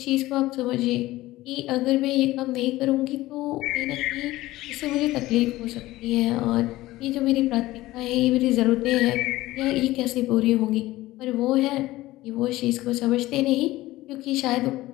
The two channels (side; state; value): right; quieter; 17.4 dB